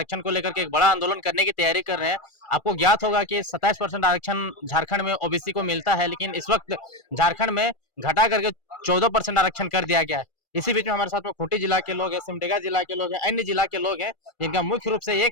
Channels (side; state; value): right; late; 2.4 ms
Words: को लेकर के एक बड़ा आंदोलन करने की तैयारी कर रहे हैं। आपको ज्ञात होगा कि 27% आरक्षण झारखंड में ओबीसी को मिलता है, लेकिन इस वक्त झारखंड में घटा करके 14% आरक्षण कर दिया गया है। इसी बीच में हमारे साथ में खूंटी जिला के लोग हैं, सिमडेगा जिला के लोग हैं, अन्य जिला के लोग हैं, जिनका मुख्य रूप से ये